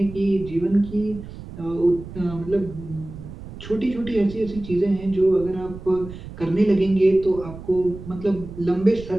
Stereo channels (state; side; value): noise; right; rumble, 13 dB below the sound